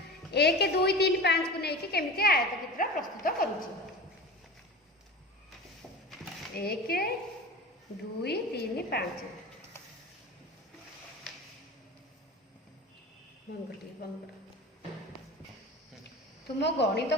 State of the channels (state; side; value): normal; both; correlation 0.32